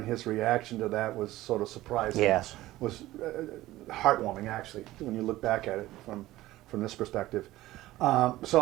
his reaction to that was sort of surprising. Yes. Was heartwarming, actually, when you look back at it from this perspective.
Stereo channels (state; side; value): quieter; left; 16.5 dB